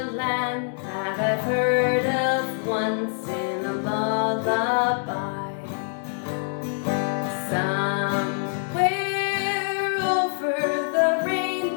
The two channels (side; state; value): right; silent; 62 dB below the other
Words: land that I've heard of once in a lullaby. Somewhere over the